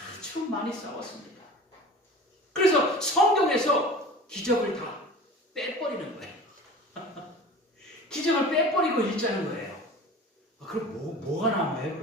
많이 싸웠습니다. 그래서 성경에서 기적을 다 빼버리는 거예요. 기적을 빼버리고 읽자는 거예요. 그럼 뭐가 남아요,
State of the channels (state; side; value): normal; both; correlation 0.39